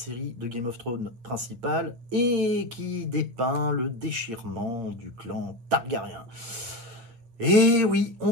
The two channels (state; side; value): late; left; 8.5 ms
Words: de Game of Thrones principale et qui dépeint le déchirement du clan Targaryen. Et oui, on